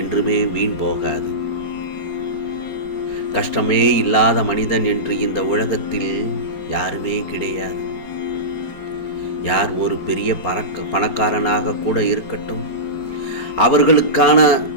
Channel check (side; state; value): right; late; 4.8 ms